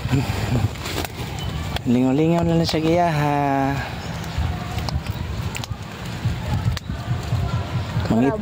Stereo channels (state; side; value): identical; both; correlation 1.00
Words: Lingaw-lingaw na lang sa giyaha.